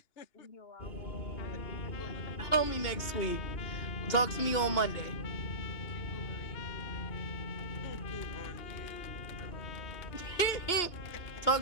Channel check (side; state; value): right; late; 2.8 ms